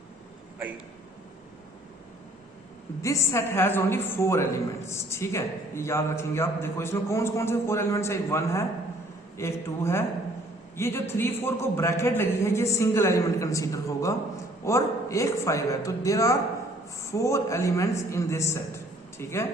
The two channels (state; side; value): normal; both; correlation 0.59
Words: This set has only 4 elements. ठीक है, ये याद रखेंगे आप। देखो इसमें कौन से 4 एलिमेंट्स है। एक 1 है, एक 2 है। ये जो 3 4 को ब्रैकेट लगी है, ये सिंगल एलिमेंट कंसीडर होगा। और एक 5 है। तो there are 4 elements in this set. ठीक है,